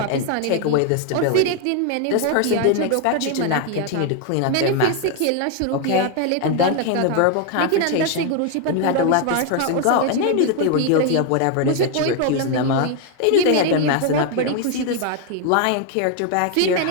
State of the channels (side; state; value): both; different; correlation 0.01